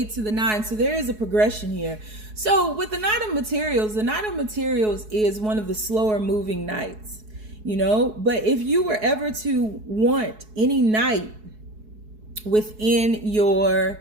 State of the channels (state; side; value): late; left; 4.7 ms